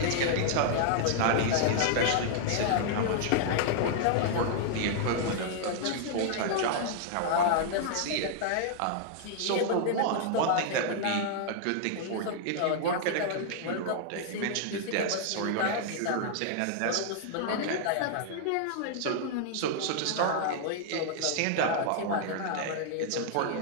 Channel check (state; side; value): different; both; correlation -0.01